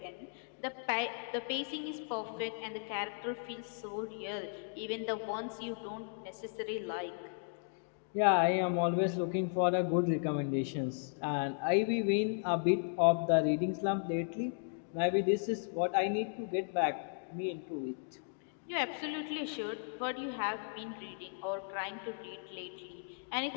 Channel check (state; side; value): silent; right; digital silence